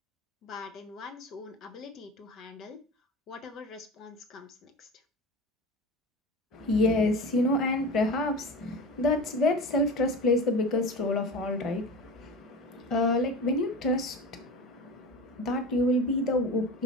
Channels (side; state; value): both; normal; correlation 0.31